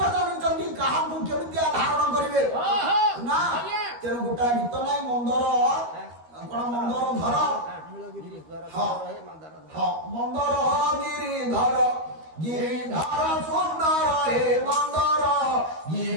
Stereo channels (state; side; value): late; left; 13 ms